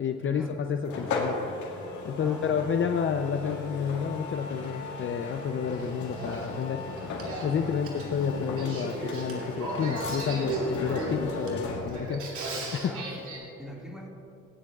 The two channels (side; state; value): right; quieter; 4.8 dB